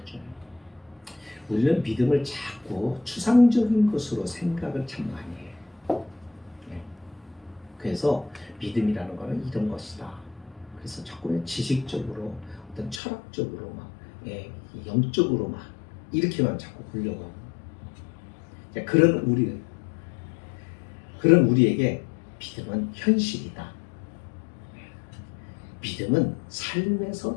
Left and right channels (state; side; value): drops out; right; at 13.0 s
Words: 우리는 믿음을 자꾸 추상적인 것으로 생각을 참 많이 해요. 네. 그래서 믿음이라는 것은 이런 것이다. 그래서 자꾸 지식적으로 어떤 철학적으로 막 영적으로 막 이렇게만 자꾸 보려고 하고 그런 우리에게 믿음은 현실이다. 믿음은